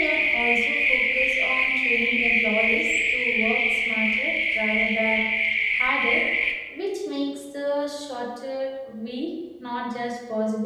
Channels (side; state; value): both; identical; correlation 1.00